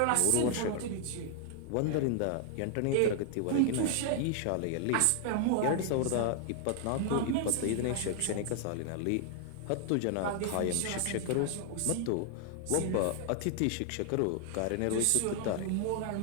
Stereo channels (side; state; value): both; different; correlation 0.00